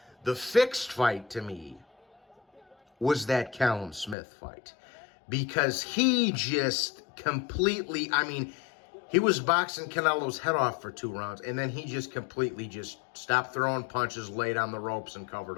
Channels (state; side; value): drops out; right; at 4.2 s